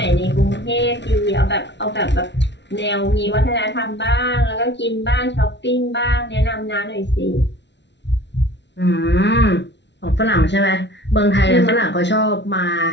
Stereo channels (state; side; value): late; right; 0.51 ms